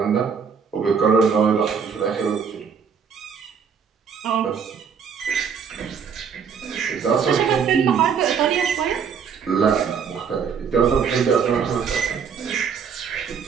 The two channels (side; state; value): left; quieter; 6.6 dB